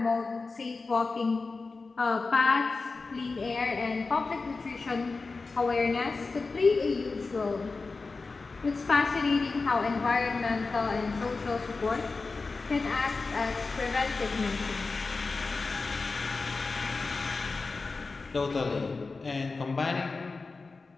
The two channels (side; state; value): right; quieter; 4.0 dB